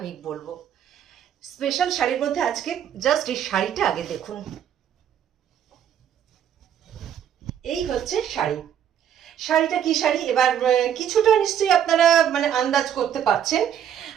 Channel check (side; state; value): left; quieter; 9.5 dB